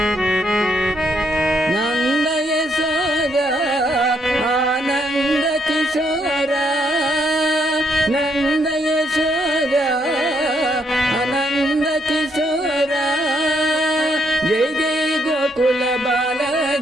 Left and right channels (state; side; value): normal; both; correlation 0.74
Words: నంద యశోద ఆనంద కిశోర నంద యశోద ఆనంద కిశోర జై జై గోకుల బాల